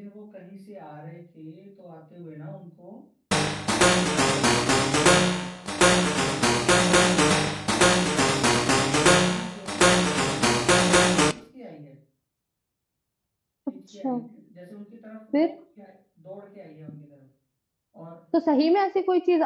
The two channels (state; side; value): identical; both; correlation 1.00